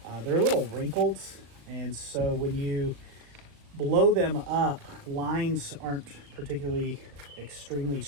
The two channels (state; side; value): late; left; 38 ms